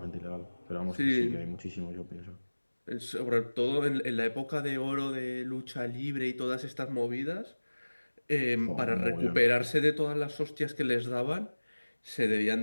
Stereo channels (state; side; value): inverted; both; correlation -1.00